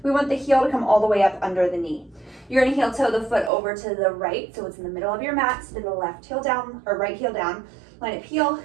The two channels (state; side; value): drops out; left; at 3.5 s